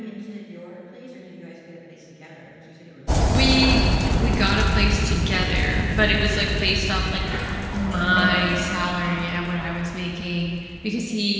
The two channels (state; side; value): identical; both; correlation 1.00